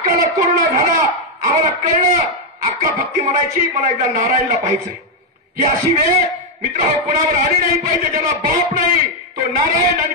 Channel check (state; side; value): normal; both; correlation 0.01